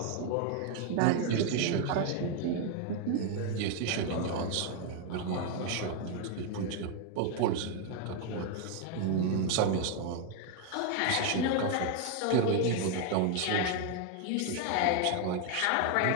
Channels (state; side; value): different; both; correlation 0.01